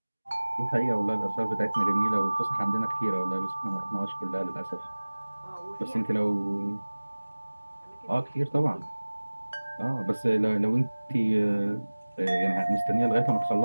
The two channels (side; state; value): both; inverted; correlation -1.00